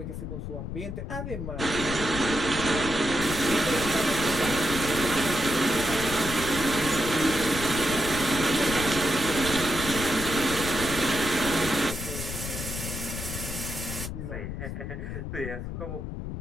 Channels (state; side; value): noise; left; rumble, 6 dB below the sound